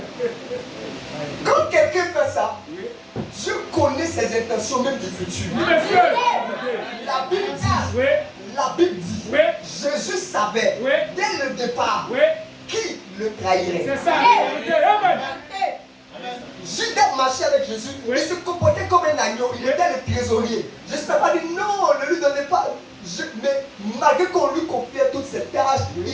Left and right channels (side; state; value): both; identical; correlation 1.00